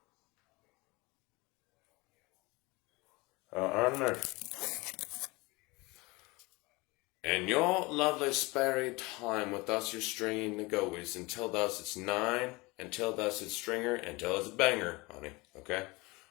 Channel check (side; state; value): right; quieter; 24.0 dB